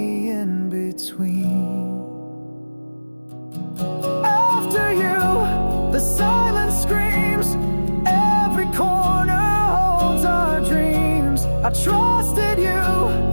in between. After you, the silence screams, every corner holds our dreams. I trusted you,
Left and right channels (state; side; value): inverted; both; correlation -1.00